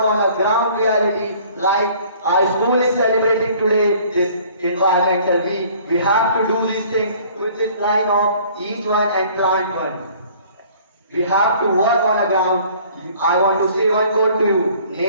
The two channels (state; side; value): inverted; both; correlation -0.54